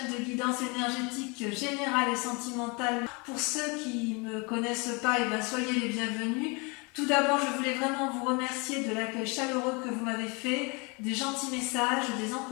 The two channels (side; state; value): right; quieter; 29.9 dB